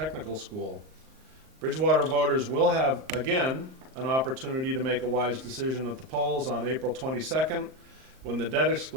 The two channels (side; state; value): left; late; 38 ms